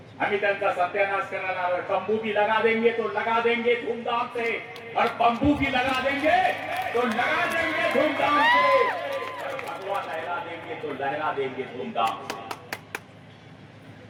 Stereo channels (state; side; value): identical; both; correlation 1.00